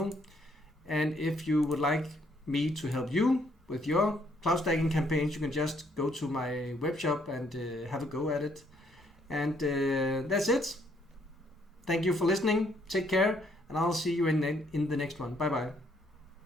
And if you would like me to help you with your cloud stacking campaigns, you can just go to my web shop and have a go at it. And that's it. Thank you for listening. Take care, and I'll see you in the next one. Bye bye.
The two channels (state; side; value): normal; both; correlation 0.69